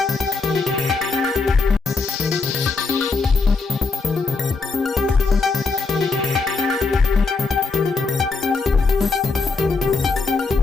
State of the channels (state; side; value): quieter; right; 4.2 dB